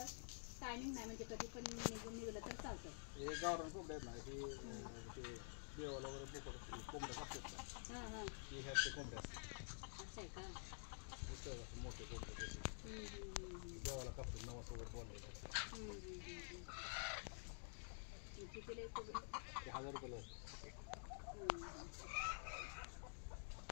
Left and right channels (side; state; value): right; silent; digital silence